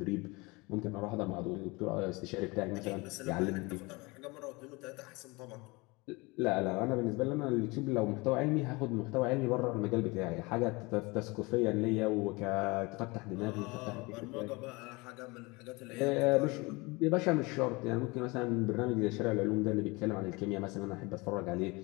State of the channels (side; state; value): right; quieter; 25.1 dB